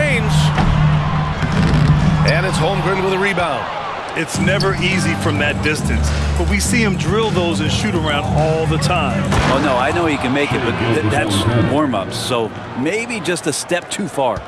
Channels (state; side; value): identical; both; correlation 1.00